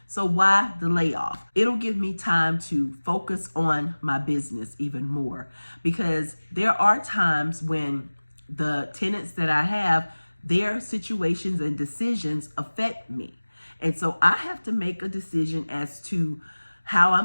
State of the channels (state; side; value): inverted; both; correlation -1.00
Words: So why the layoff? It'll give me time to focus on my business even more because there are times when the tenants that I have, their situations and decisions affect me. And so I have to make a decision as to how